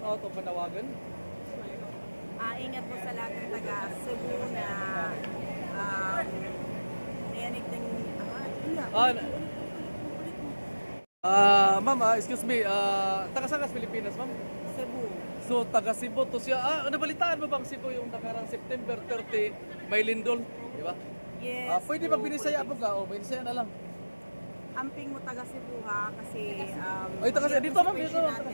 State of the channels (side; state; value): both; inverted; correlation -1.00